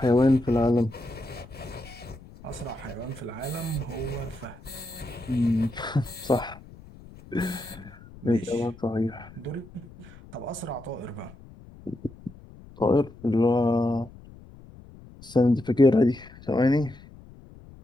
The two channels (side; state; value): left; noise; rumble, 20 dB below the sound